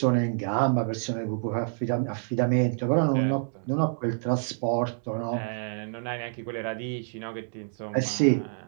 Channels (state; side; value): silent; left; digital silence